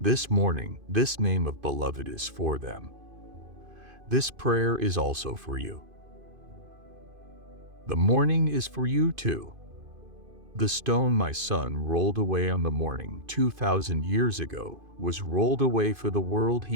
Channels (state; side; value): late; left; 2.5 ms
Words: this morning, this name of beloved is for them, this prayer is also for you. The morning is for you too. The stone my son rolled away on the morning 2,000 years ago was rolled away for the world